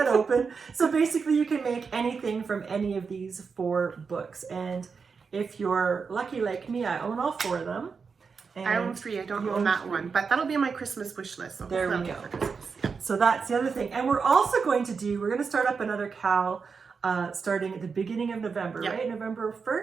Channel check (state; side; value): quieter; left; 5.4 dB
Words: open. So basically you can make anything from any of these 4 books. And if you're lucky like me, I own all 4 of them. And I own 3. I don't own that one, but that'll be on my Christmas wish list. So there we hopefully go. I'll get for Christmas. Yeah. So that's the other thing. And we're also going to start up another KAL starting at the beginning of November, right? November